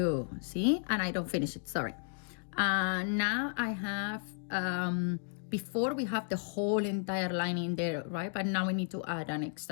see, and I don't finish it, sorry. Now I have before we have the whole entire line in there, right? But now we need to add an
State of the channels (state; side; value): silent; right; digital silence